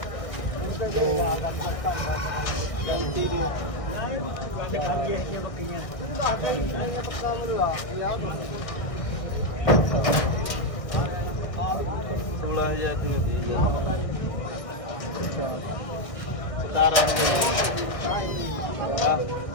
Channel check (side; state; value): right; late; 1.6 ms